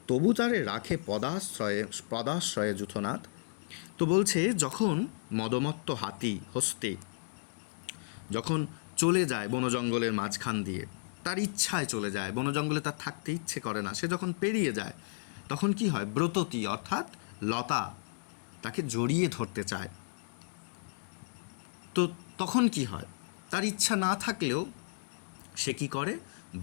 তবু তারে রাখে পদাশ্রয়ে যূথনাথ। তো বলছে যখন মদমত্ত হাতি হস্তে যখন চলে যায় বনজঙ্গলের মাঝখান দিয়ে, তার ইচ্ছায় চলে যায়, বনজঙ্গলে তার থাকতে ইচ্ছে করে না, সে যখন পেরিয়ে যায় তখন কি হয়? ব্রততী অর্থাৎ লতা তাকে জড়িয়ে ধরতে চায়। তো তখন কি হয়? তার ইচ্ছা না থাকলেও সে কি করে?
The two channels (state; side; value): silent; right; digital silence